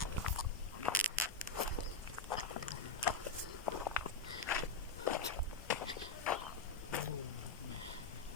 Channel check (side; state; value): right; quieter; 3.9 dB